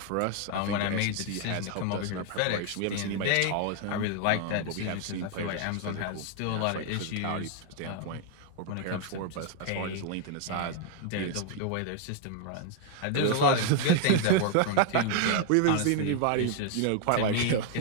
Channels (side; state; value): both; different; correlation 0.00